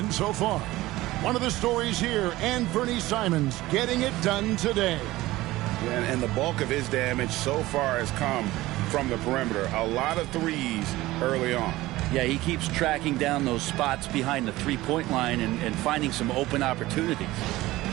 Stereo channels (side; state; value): left; quieter; 17.8 dB